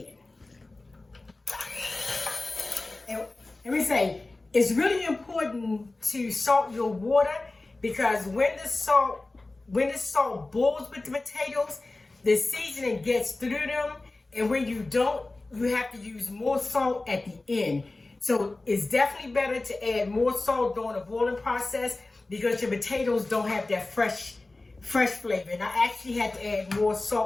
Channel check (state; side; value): quieter; right; 3.1 dB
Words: And let me say, it's really important to salt your water because when the salt boils with the potatoes, the seasoning gets through them. And when you don't, you have to use more salt at the end. So it's definitely better to add more salt during the boiling process because your potatoes don't have that fresh flavor. And I actually had to add more